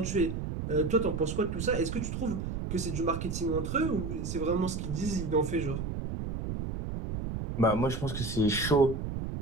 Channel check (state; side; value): noise; right; rumble, 4 dB below the sound